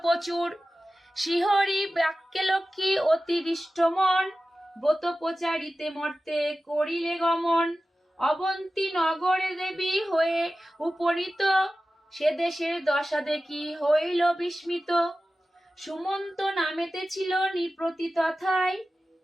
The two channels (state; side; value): normal; both; correlation 0.95